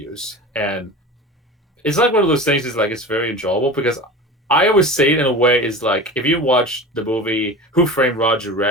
And it's one of those things is it's very enjoyable, because I always say it in a way is if you watch the movie Who Framed Roger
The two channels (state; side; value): normal; both; correlation 0.33